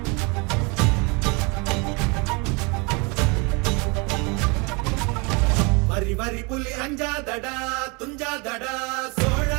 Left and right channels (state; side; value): quieter; left; 29.8 dB